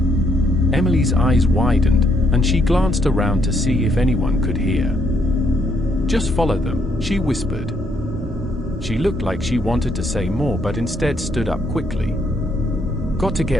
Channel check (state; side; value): normal; both; correlation 0.72